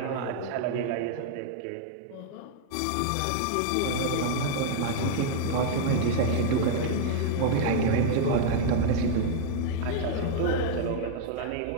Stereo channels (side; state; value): both; different; correlation -0.01